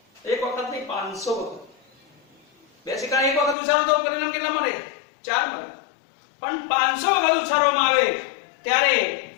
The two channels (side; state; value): right; drops out; at 3.6 s